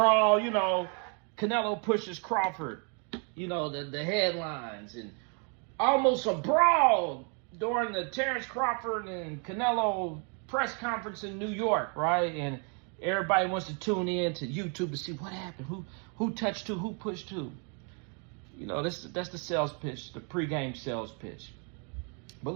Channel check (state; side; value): quieter; left; 38.1 dB